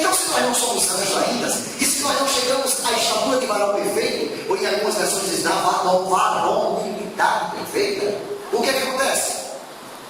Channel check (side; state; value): both; identical; correlation 1.00